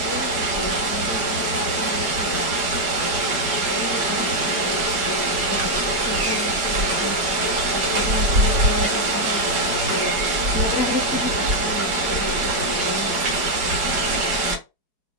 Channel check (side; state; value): left; late; 5.1 ms